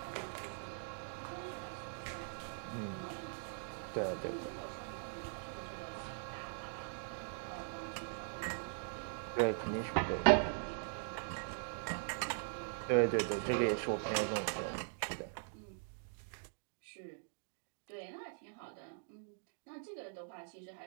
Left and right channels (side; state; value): left; silent; digital silence